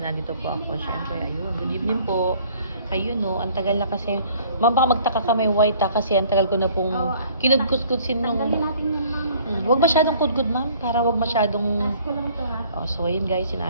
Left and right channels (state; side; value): inverted; both; correlation -0.56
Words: po ako. Siyempre, ayun. Good evening po. Ayun no, ang tagal na kasi. Ma'am, baka magtaka ka may white kasi ang tagal ko na pong kinudkus-kudsin nung... Huwag masyadong kudkud ma'am, para huwag masyadong... Oh, so ayun guys,